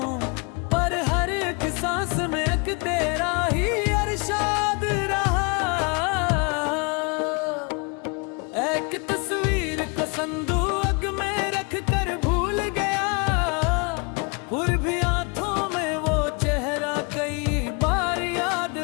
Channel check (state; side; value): quieter; right; 32.2 dB